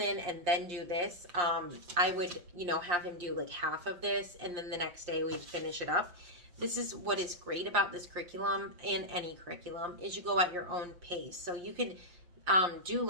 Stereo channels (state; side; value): late; left; 5.7 ms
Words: and then do this, I would, you know, have him do like half of this, and then the next day we'd finish it up. This is what is great about this curriculum, and any curriculum, is you go at your own pace. So you could do